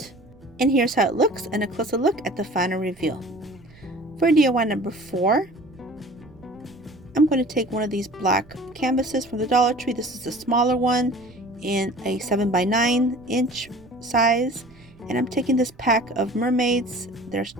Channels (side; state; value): right; noise; rumble, 25 dB below the sound